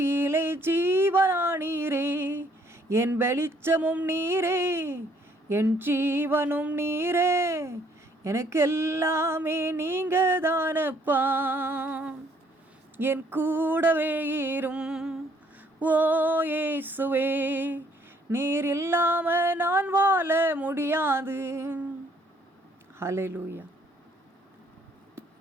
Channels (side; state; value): both; normal; correlation 0.64